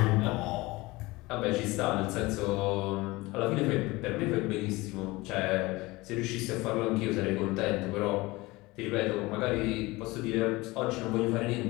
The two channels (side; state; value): right; quieter; 21.6 dB